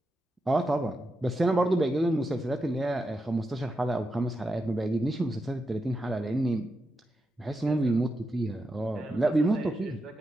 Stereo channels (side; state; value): both; normal; correlation 0.87